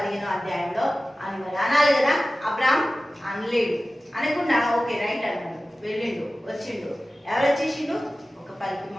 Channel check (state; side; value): normal; both; correlation 0.96